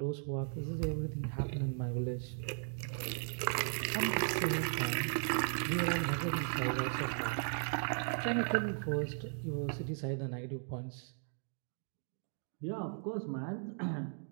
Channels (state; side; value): silent; left; 53 dB below the other